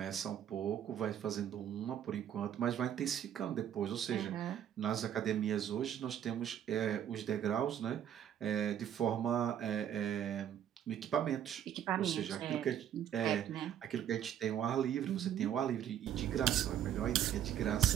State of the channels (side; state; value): left; quieter; 10.1 dB